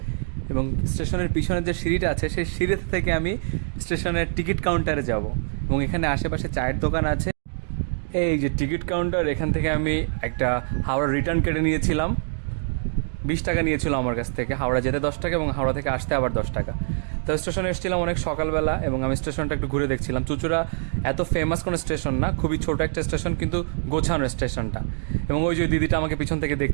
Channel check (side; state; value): left; silent; digital silence